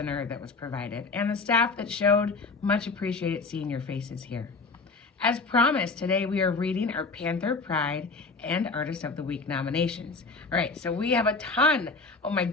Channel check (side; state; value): right; quieter; 4.0 dB